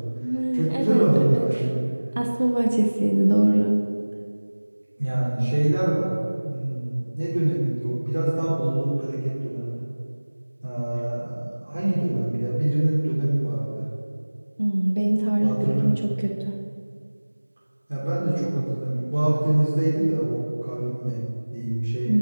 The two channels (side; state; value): both; inverted; correlation -1.00